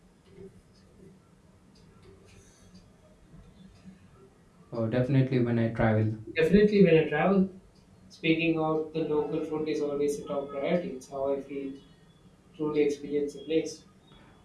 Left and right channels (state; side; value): identical; both; correlation 1.00